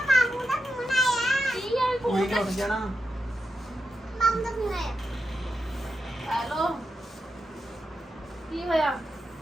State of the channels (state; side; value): normal; both; correlation 0.88